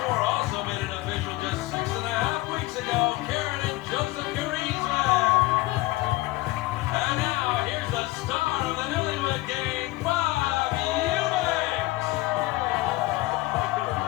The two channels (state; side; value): quieter; right; 19.6 dB